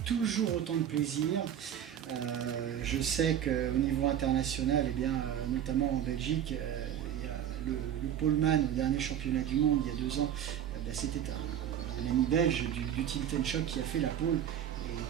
toujours autant de plaisir. Je sais qu'au niveau international, eh bien, notamment en Belgique, il y a le poleman au dernier championnat du monde il y a 2 ans, c'était un ami belge du Team Ten-Shock qui a fait la pole et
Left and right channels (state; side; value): quieter; left; 10.0 dB